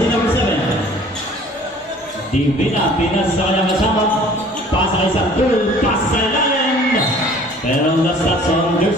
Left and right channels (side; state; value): both; normal; correlation 0.51